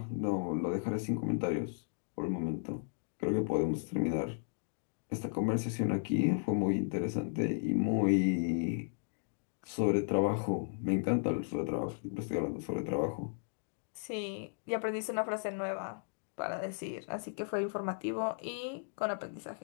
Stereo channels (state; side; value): silent; right; digital silence